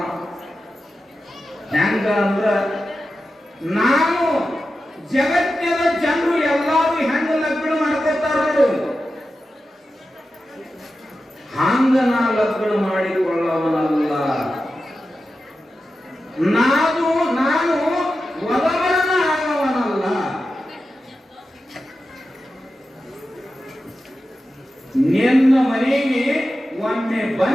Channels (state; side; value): normal; both; correlation 0.92